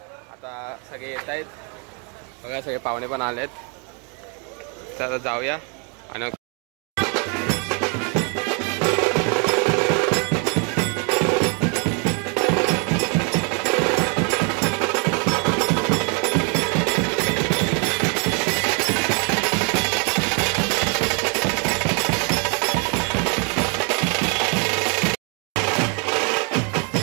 आता सगळे येत आहेत बघा, सगळे पाहुणे पण आलेत. चला जाऊया. आणि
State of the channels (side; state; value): left; quieter; 36.6 dB